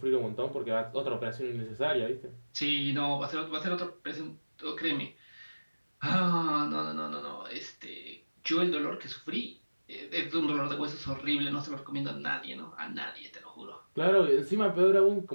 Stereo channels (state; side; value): inverted; both; correlation -1.00